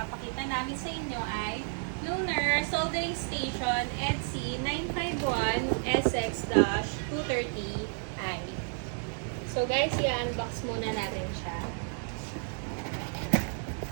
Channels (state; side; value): silent; left; 57 dB below the other